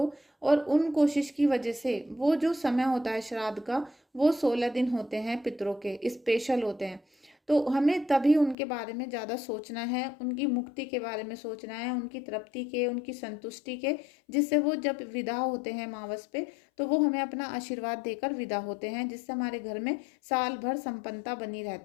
और उन कोशिश की वजह से वो जो समय होता है श्राद्ध का, वो 16 दिन होते हैं पितरों के, स्पेशल होते हैं। तो हमें तभी उनके बारे में ज़्यादा सोचना है, उनकी मुक्ति के बारे में सोचना है, उनकी तृप्ति के, उनकी संतुष्टि के, जिससे वो जब विदा होते हैं मावस पे, तो वो हमें अपना आशीर्वाद देकर विदा होते हैं, जिससे हमारे घर में साल भर संपन्नता बनी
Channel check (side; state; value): right; drops out; at 8.6 s